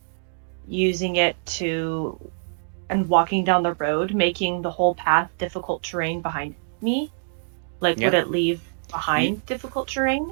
using it to and walking down the road, making the whole path difficult terrain behind me? Like, would Yeah. it leave You, behind difficult terrain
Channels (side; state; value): left; silent; digital silence